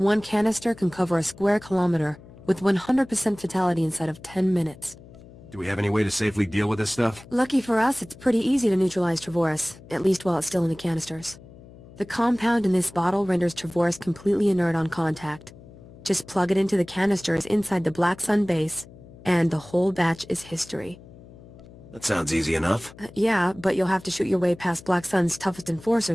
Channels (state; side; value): noise; left; hum, 20 dB below the sound